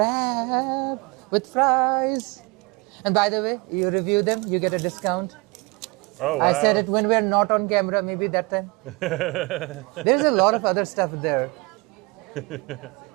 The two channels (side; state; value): left; quieter; 26.6 dB